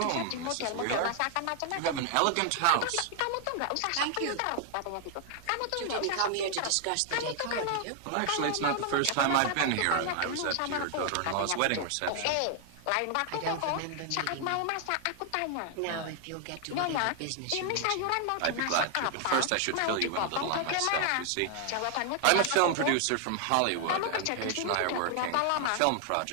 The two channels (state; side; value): different; both; correlation 0.00